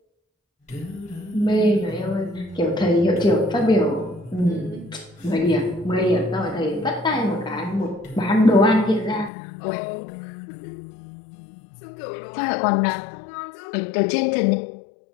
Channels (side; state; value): right; drops out; at 9.3 s